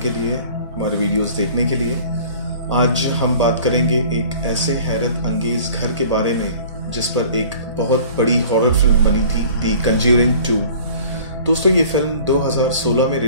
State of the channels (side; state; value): both; inverted; correlation -0.47